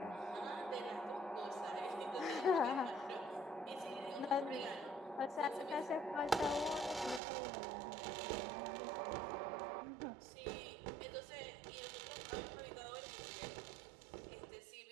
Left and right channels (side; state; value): left; drops out; at 7.2 s